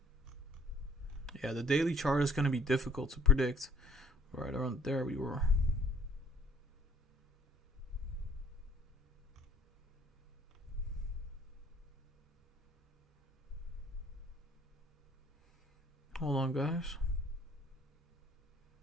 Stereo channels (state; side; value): normal; both; correlation 0.56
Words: Yeah, the daily chart is going to be difficult to predict. Right around there we were. Hold on, guys.